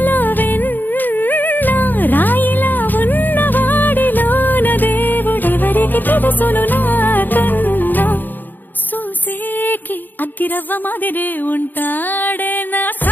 వెన్న రాయిలా ఉన్నవాడిలోన దేవుడెవరికి తెలుసును నాకన్నా. సూసేకి అగ్గిరవ్వ మాదిరే ఉంటాడే నా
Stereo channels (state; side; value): late; right; 0.090 ms